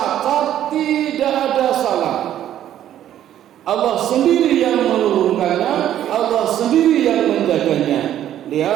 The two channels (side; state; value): left; quieter; 11.4 dB